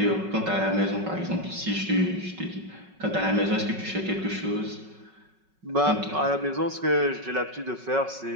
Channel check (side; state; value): left; late; 5.4 ms